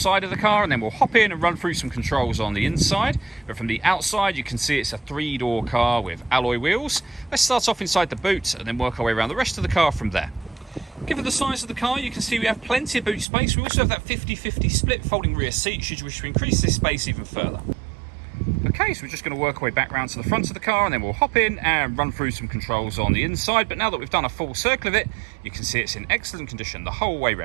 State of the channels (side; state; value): left; drops out; at 13.2 s